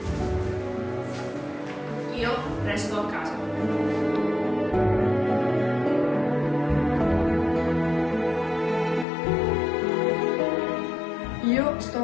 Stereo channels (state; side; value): drops out; right; at 9.1 s